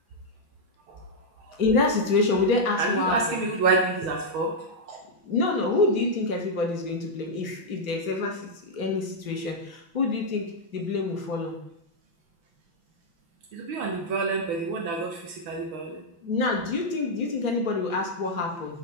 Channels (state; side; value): late; left; 5.9 ms